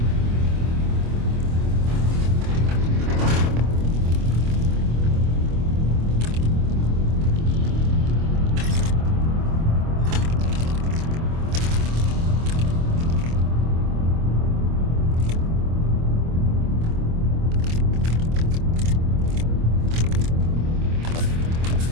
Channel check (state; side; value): late; left; 25 ms